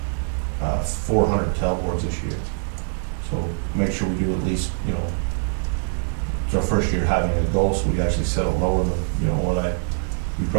400 tailboards this year. So make sure we do at least, you know, it's our first year having a goal, so we actually set it lower than, you know, what we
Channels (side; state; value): left; silent; 63 dB below the other